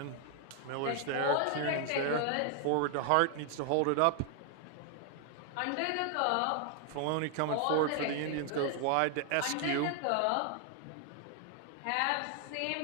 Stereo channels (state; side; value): different; both; correlation 0.00